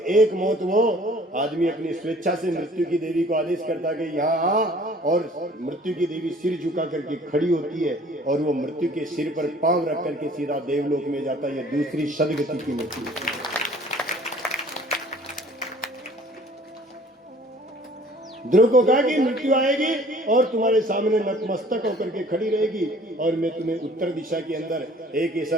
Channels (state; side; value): normal; both; correlation 0.53